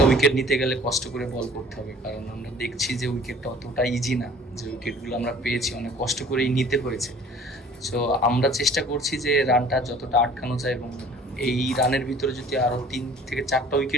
উইকেট নিতে গেলে কষ্ট করে বল করতে হবে, কারণ আমরা দেখছি যে উইকেটটা অতটা ইজি না, যে উইকেটগুলো আমরা পেয়েছি অনেক কষ্ট করেই নিতে হয়েছে। সো আমরা চেষ্টা করছি যে রানটা যতটা আটকানো যায়, এবং এই রানের ভিতরে যদি আরও 3 থেকে 4টা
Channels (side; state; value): both; normal; correlation 0.50